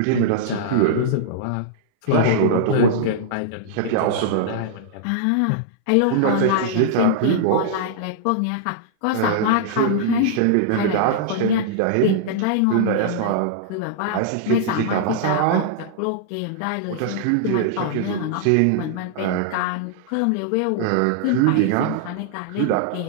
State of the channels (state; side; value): different; both; correlation -0.01